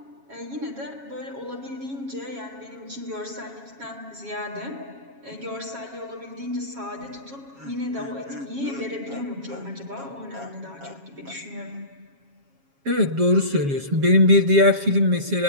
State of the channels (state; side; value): late; left; 7.3 ms